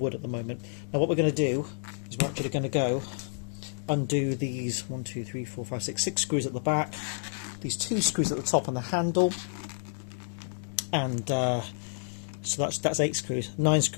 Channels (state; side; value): silent; right; digital silence